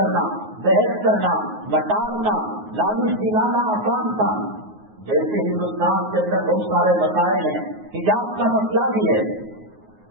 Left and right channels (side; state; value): left; late; 9.5 ms